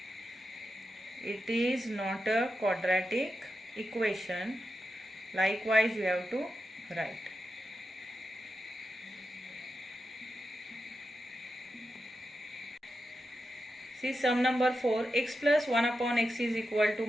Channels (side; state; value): both; normal; correlation 0.89